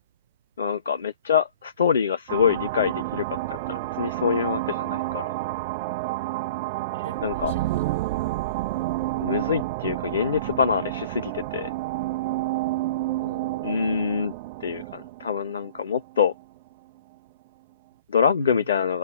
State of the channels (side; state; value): both; inverted; correlation -0.47